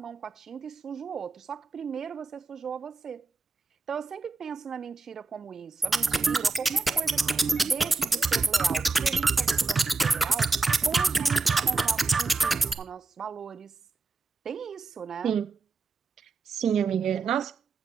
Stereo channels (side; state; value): left; quieter; 3.8 dB